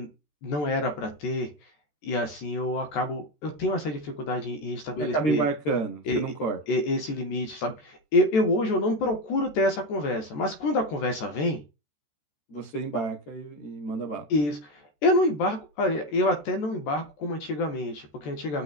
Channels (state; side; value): late; right; 13 ms